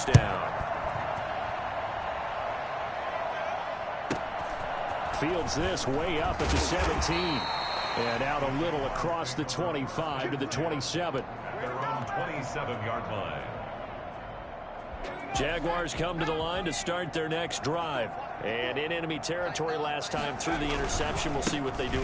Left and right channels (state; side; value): identical; both; correlation 1.00